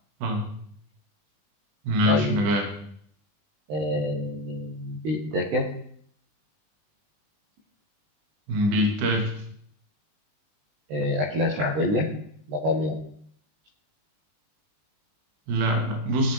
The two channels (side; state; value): left; late; 20 ms